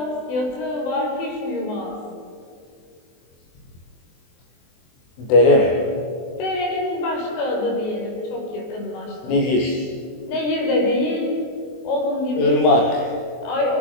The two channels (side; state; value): right; late; 24 ms